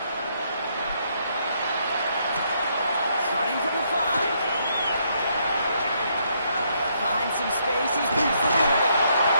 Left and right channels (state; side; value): inverted; both; correlation -0.73